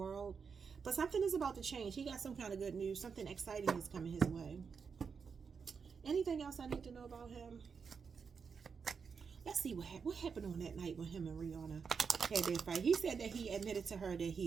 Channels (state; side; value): quieter; left; 5.9 dB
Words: But something is about to change. He got some kind of good news. Something exciting is coming his way. Anything else I need to know about him? Let's see what happened on that night when him and Rihanna had their fight. He said that he admitted to her that